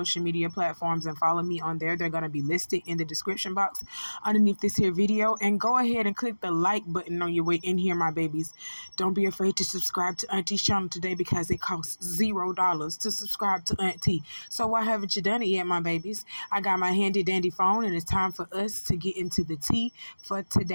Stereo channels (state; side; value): inverted; both; correlation -1.00